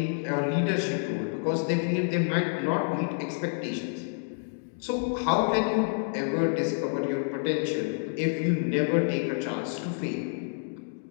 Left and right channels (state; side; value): silent; right; 59 dB below the other